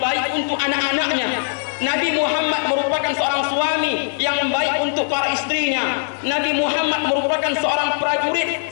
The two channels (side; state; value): right; silent; digital silence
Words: untuk anak-anaknya. Nabi Muhammad merupakan seorang suami yang baik untuk para istrinya. Nabi Muhammad merupakan seorang prajurit,